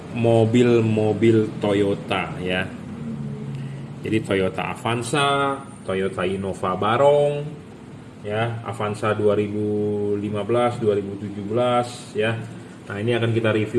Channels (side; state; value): both; identical; correlation 1.00